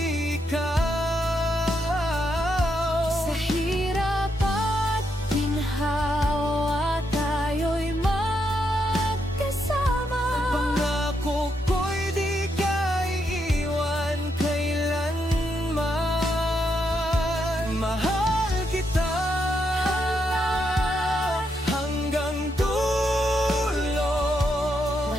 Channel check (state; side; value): normal; both; correlation 0.80